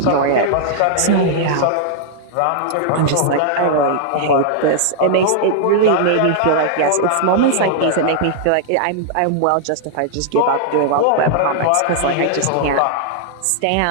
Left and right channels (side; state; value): both; different; correlation -0.01